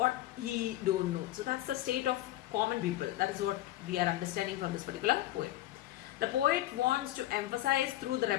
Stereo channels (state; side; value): quieter; right; 15.1 dB